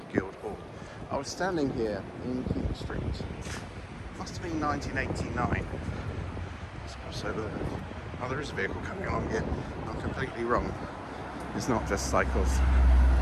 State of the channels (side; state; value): both; identical; correlation 1.00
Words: Guildhall. I was standing here in King Street. Must have been 1989. Let's cross over there. Oh, there is a vehicle coming along here. I'm completely wrong. It's not just cycles.